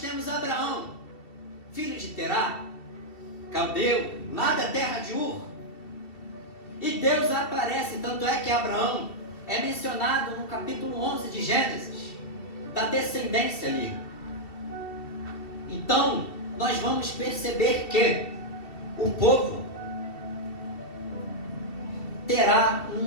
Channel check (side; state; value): right; late; 2.7 ms